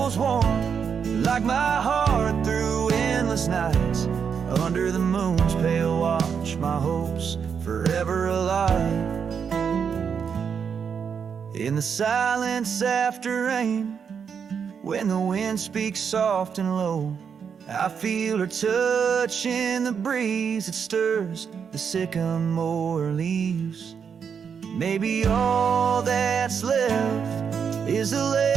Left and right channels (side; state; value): left; quieter; 6.8 dB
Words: warm, like my heart through endless nights. Under the moon's pale watch, my hopes forever alive. In the silence after rain, when the wind speaks soft and low, I feel her touch in the breeze that stirs the sycamore leaves. Maybe all that's left is a